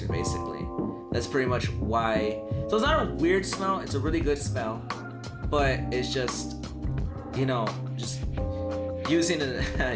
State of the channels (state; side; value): identical; both; correlation 1.00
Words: basically. That's pretty much why. So it's not a weird smell, it's a really good smell, but it's just, you know, just using